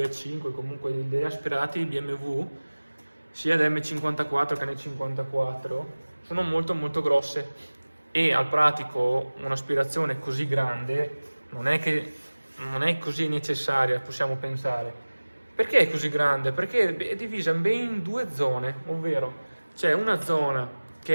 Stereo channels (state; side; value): inverted; both; correlation -1.00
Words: comunque degli aspirati BMW sia dell'M54 che N54 sono molto grosse e al pratico un'aspirazione così grande non è così necessaria, possiamo pensare. Perché è così grande? Perché è divisa ben in due zone, ovvero c'è una zona